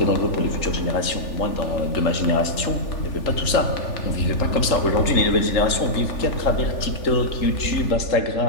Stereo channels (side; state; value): right; late; 3.4 ms